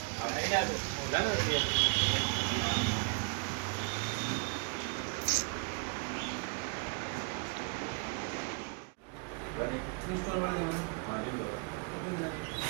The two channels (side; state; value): left; quieter; 37.3 dB